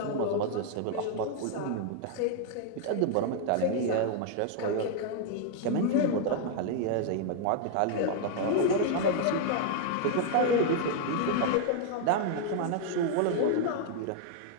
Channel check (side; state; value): both; different; correlation 0.00